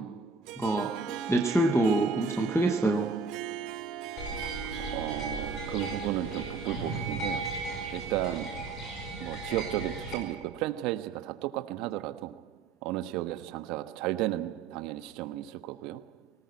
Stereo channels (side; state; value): left; quieter; 4.7 dB